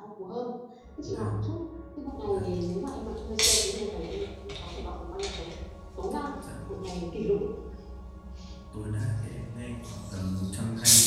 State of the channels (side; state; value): both; identical; correlation 1.00